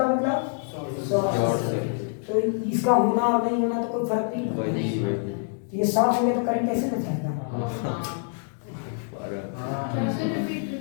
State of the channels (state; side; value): silent; right; 58 dB below the other